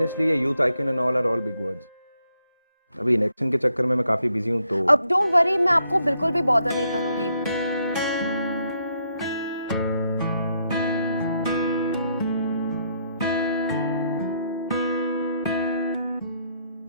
ये youth icon and all are all big words. अभी इलेक्शन के चक्कर में मैं काफी बिजी हूं, तो अब डोंट वरी, मैं आपको बिल्कुल भी बॉदर नहीं करूंगी।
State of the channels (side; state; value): both; inverted; correlation -0.75